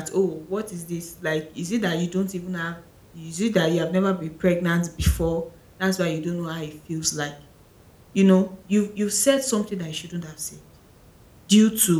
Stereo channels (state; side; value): identical; both; correlation 1.00